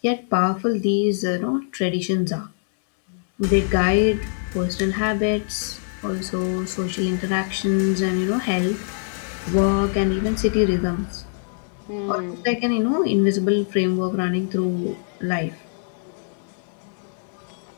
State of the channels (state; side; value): silent; right; digital silence